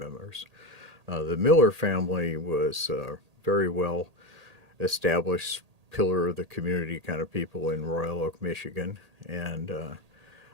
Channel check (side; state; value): left; late; 1.8 ms